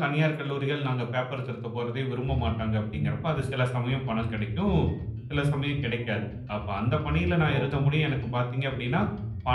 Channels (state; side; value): identical; both; correlation 1.00